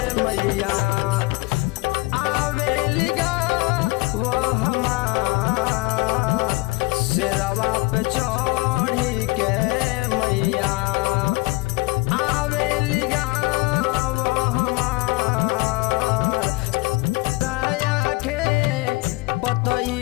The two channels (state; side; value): quieter; right; 23.4 dB